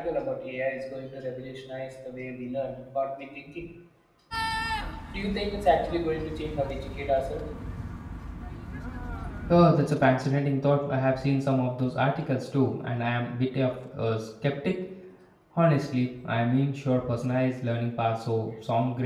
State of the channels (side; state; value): both; identical; correlation 1.00